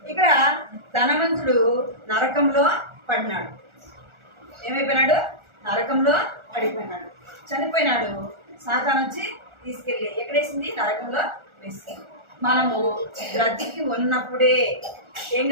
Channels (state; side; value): late; left; 1.4 ms